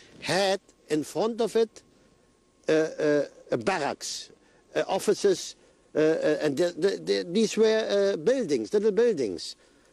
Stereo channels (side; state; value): both; identical; correlation 1.00